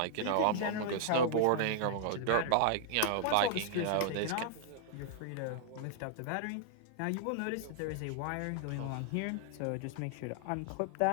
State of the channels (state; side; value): different; both; correlation -0.01